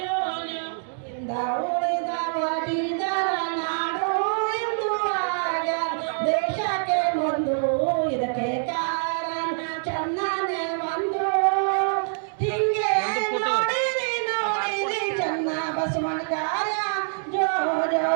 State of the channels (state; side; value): silent; left; digital silence